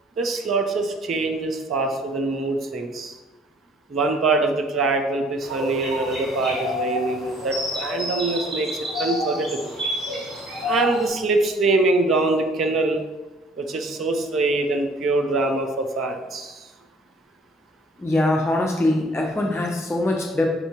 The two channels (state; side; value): normal; both; correlation 0.56